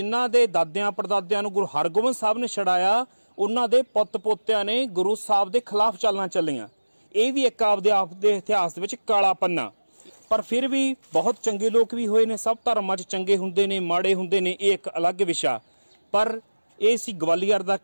ਦੇ ਦਾਦਿਆਂ ਪੜਦਾਦਿਆਂ ਨੂੰ ਗੁਰੂ ਹਰਗੋਬਿੰਦ ਸਾਹਿਬ ਨੇ ਛਡਾਇਆ, ਉਹਨਾਂ ਦੇ ਪੁੱਤ ਪੋਤਿਆਂ ਨੇ ਗੁਰੂ ਸਾਹਿਬ ਦੇ ਖਿਲਾਫ ਚਾਲਾਂ ਚੱਲੀਆਂ। ਇਹ ਵੀ ਇੱਕ ਆਪਦੇ ਇਤਿਹਾਸ ਦੇ ਵਿੱਚ ਕਾਲਾ ਪੰਨਾ। ਪਰ ਫਿਰ ਵੀ ਬਹੁਤ ਚੰਗੇ ਲੋਕ ਵੀ ਹੋਏ ਨੇ। ਸਭ ਧਰਮਾਂ 'ਚ ਚੰਗੇ ਹੁੰਦੇ ਨੇ, ਮਾੜੇ ਹੁੰਦੇ ਨੇ, ਇਹ ਇੱਕ ਅਲੱਗ ਵਿਸ਼ਾ। ਪਰ ਇਹ ਸੀ ਗਵਾਲੀਅਰ ਦਾ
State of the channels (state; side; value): inverted; both; correlation -1.00